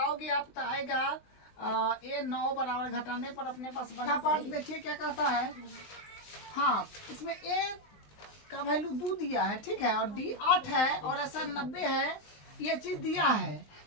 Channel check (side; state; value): right; late; 19 ms